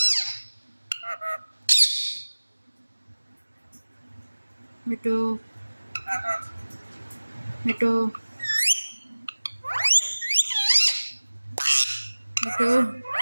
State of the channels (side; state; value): both; inverted; correlation -1.00